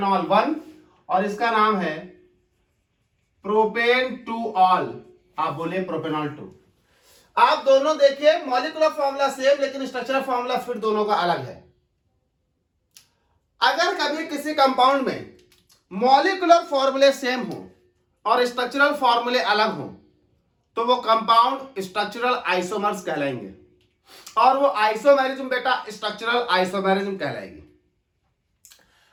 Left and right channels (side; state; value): both; identical; correlation 1.00